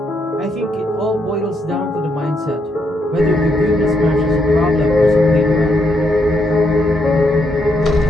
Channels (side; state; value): both; normal; correlation 0.77